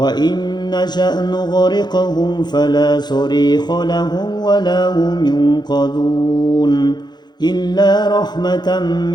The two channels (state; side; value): late; right; 0.21 ms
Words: نشأ نغرقهم فلا صريخ لهم ولا هم ينقذون إلا رحمة